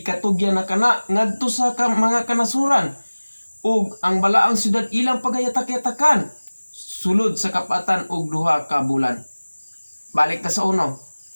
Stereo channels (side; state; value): both; inverted; correlation -1.00